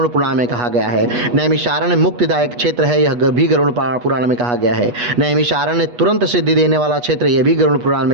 पुराण में कहा गया है। नैमिषारण्य मुक्तिदायक क्षेत्र है, यह भी गरुड़ पुराण में कहा गया है। नैमिषारण्य तुरंत सिद्धि देने वाला क्षेत्र, यह भी गरुड़ पुराण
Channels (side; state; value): left; late; 8.3 ms